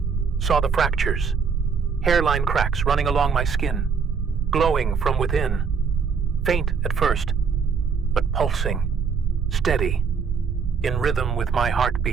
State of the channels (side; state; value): left; quieter; 5.9 dB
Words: saw the fractures, hairline cracks running along my skin, glowing from within, faint at first, but pulsing, steady, in rhythm with my